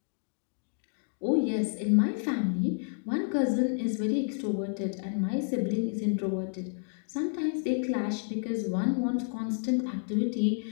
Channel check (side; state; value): right; silent; 58 dB below the other